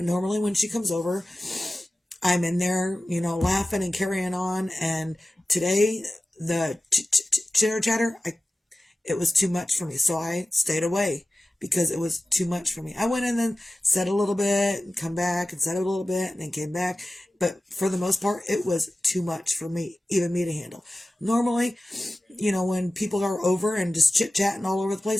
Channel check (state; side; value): normal; both; correlation 0.95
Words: she comes over, I'm in there, laughing and carrying on. And today, the chitter chatter, it was too much for me. So I stayed away because it was too much for me. I went in and said a little bit and come back and said a little bit and then came back. But for the most part, it was too much for me, even me to handle. Normally, when people are over and just chit-chatting all over the